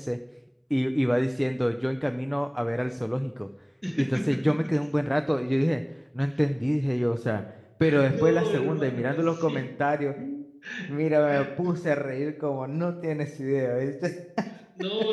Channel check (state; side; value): identical; both; correlation 1.00